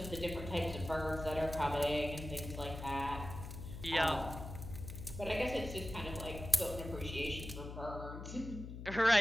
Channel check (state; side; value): noise; left; hum, 9 dB below the sound